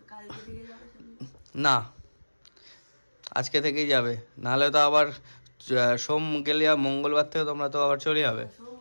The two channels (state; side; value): inverted; both; correlation -1.00